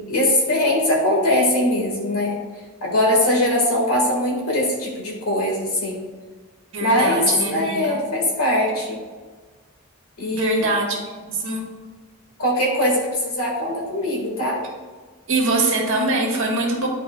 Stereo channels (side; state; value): both; normal; correlation -0.02